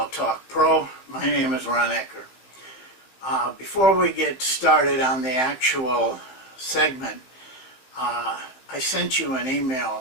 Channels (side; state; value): right; late; 16 ms